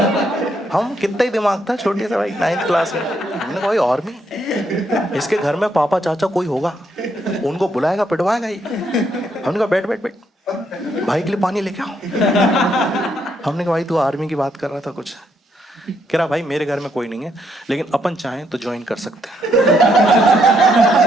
हम कितना ही दिमाग था छोटे से भाई, 9th क्लास में। हमने कहा भाई आर्मी, इसके घर में पापा चाचा कोई होगा, उनको बुलाएगा पिटवाएगा ही। हमने कहा बैठ बैठ बैठ, भाई के लिए पानी लेके आओ। हमने कहा भाई तू आर्मी की बात कर रहा था कुछ। कह रहा भाई मेरे घर में कोई नहीं है, लेकिन अपन चाहें तो ज्वाइन कर सकते हैं।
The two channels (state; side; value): normal; both; correlation 0.75